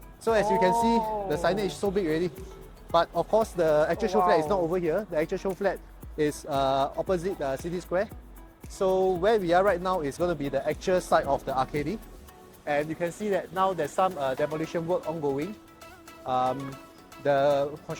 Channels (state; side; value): identical; both; correlation 1.00